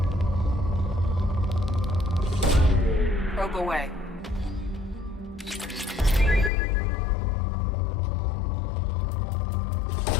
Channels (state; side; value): drops out; right; at 6.5 s